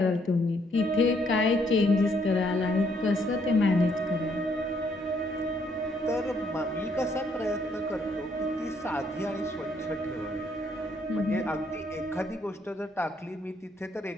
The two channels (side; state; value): both; normal; correlation 0.70